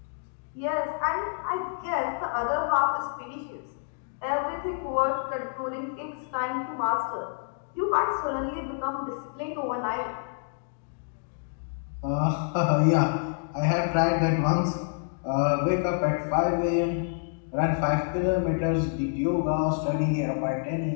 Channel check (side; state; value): right; silent; digital silence